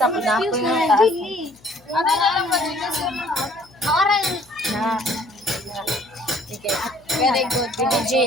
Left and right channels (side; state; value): left; noise; hum, 29 dB below the sound